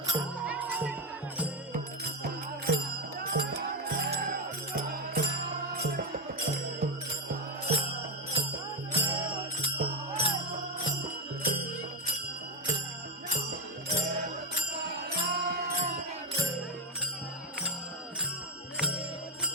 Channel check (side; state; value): both; normal; correlation 0.09